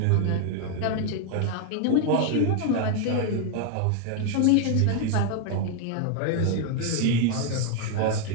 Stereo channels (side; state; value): both; different; correlation 0.00